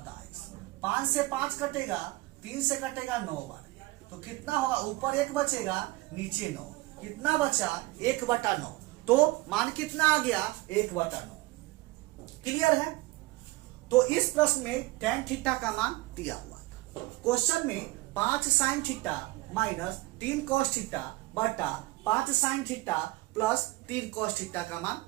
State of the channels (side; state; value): left; quieter; 20.6 dB